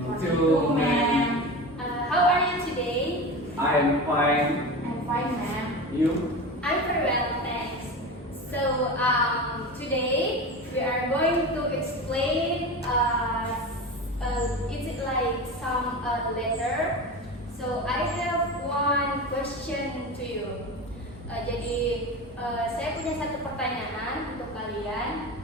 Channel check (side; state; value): both; normal; correlation 0.27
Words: Hello, to ma'am. How are you today? I'm fine. I'm fine, ma'am. You? I'm very well, thanks. So, today we are going to explain. Is it like some letter? So, I have one question to you. Saya punya satu pertanyaan untuk kalian.